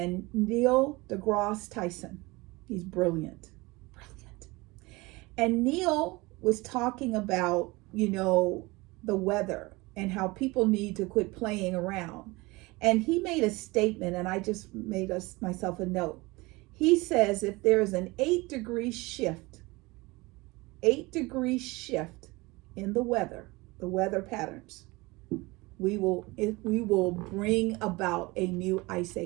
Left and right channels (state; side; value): quieter; left; 23.1 dB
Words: Neil deGrasse Tyson. He's brilliant. And Neil was talking about, the weather and how people need to quit playing around. And he made a statement, and I just made myself a note. He says if there's an 8-degree shift in the weather patterns, we will bring about a new ice